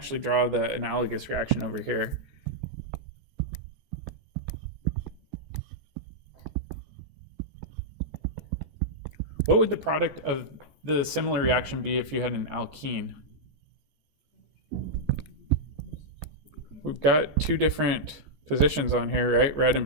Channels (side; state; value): left; late; 14 ms